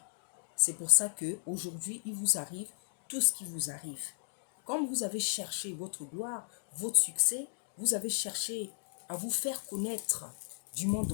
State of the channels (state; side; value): silent; right; digital silence